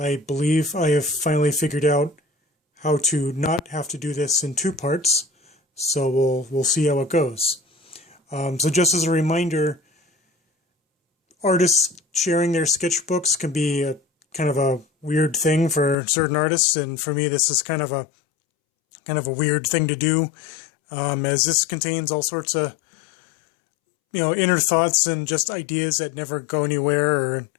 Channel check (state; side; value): drops out; right; at 16.0 s